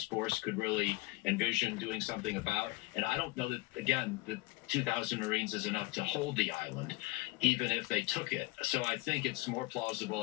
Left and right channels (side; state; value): right; quieter; 21.2 dB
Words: force could really envision doing something about. And I don't know that, again, the 2,000 Marines is enough to hold the island, even if they took it. So I think it's more